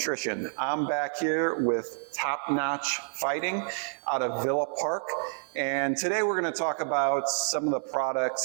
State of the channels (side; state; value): left; silent; digital silence